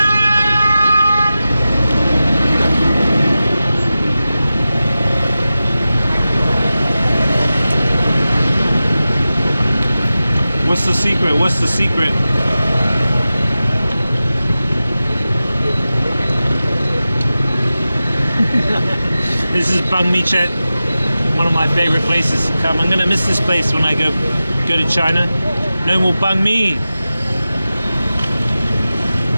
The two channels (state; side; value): inverted; both; correlation -0.94